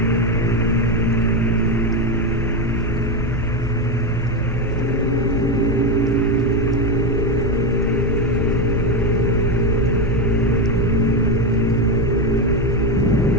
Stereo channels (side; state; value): both; normal; correlation 0.12